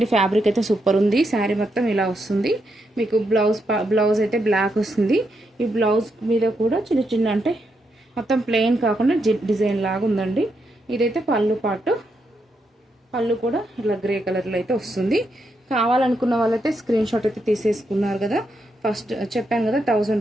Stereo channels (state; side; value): normal; both; correlation 0.81